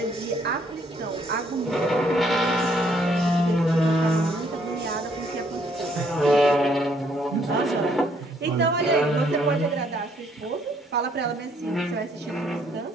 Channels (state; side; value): normal; both; correlation 0.67